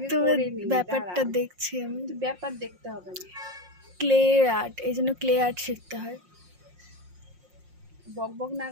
তোমার ব্যাপারটা দেখছি আমি। ব্যাপার দেখতে হবে না, ক্লে আর্ট, এই জন্য ক্লে আর্ট শিখতে হয়। বক বক না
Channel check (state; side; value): late; left; 5.6 ms